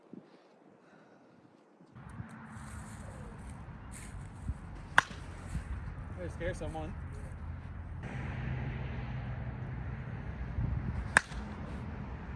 Way to scare someone.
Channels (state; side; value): identical; both; correlation 1.00